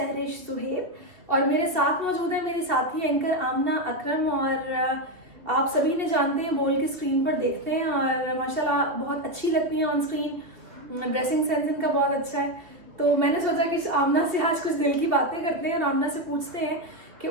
सुहेब और मेरे साथ मौजूद है मेरे साथी एंकर आमना अकरम। और आप सभी ने जानते हैं, बोल के स्क्रीन पर देखते हैं और माशाल्लाह बहुत अच्छी लगती हैं ऑन स्क्रीन। ड्रेसिंग सेंस इनका बहुत अच्छा है, तो मैंने सोचा कि आमना से आज कुछ दिल की बातें करते हैं और आमना से पूछते हैं कि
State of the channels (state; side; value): late; left; 2.5 ms